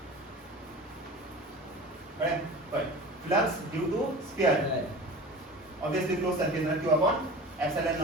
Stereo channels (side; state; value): both; normal; correlation 0.36